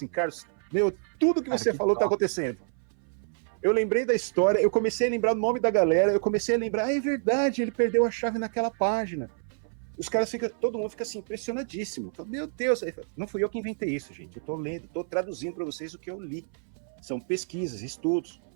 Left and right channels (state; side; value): silent; left; 59 dB below the other